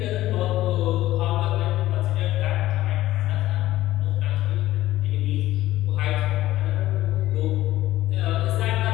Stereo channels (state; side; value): quieter; right; 15.3 dB